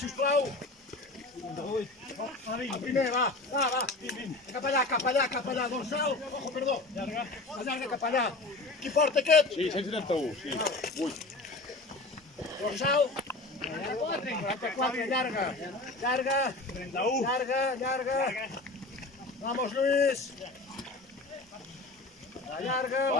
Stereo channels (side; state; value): right; quieter; 3.0 dB